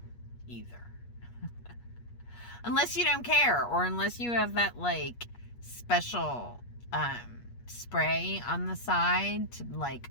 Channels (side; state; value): right; late; 8.4 ms